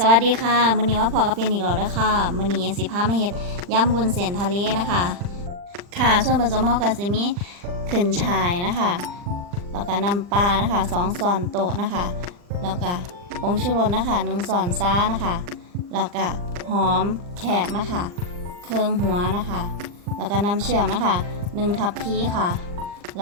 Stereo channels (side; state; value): left; late; 40 ms